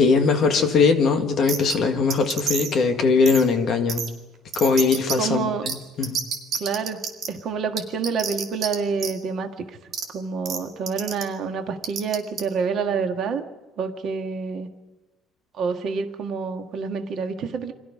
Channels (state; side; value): normal; both; correlation 0.56